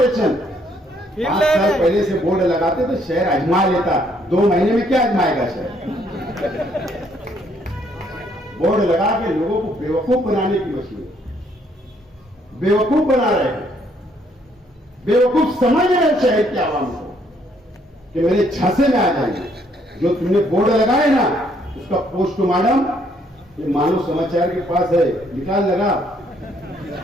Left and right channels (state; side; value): normal; both; correlation 0.68